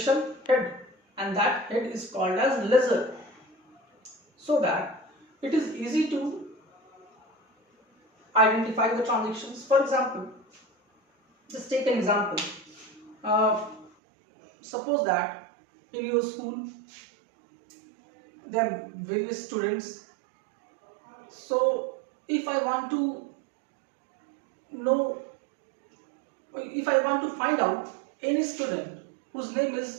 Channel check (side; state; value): left; drops out; at 13.9 s